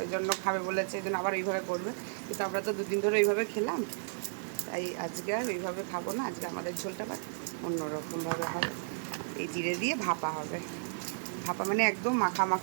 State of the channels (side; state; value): left; silent; 56 dB below the other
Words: ওই জন্য খাবে বলেছে, এই জন্য আবার ওইভাবে করবে। কিন্তু আমরা তো 2 দিন ধরে ওইভাবে খেলাম, তাই আজকে আর ওইভাবে খাবো না। আজকে আমাদের ঝোলটা অন্যরকমভাবে হবে, এই জিরে দিয়ে ভাপা হবে। ভাপা মানে একদম মাখা